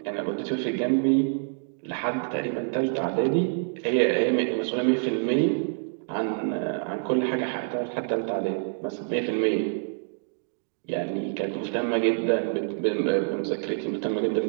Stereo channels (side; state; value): left; silent; digital silence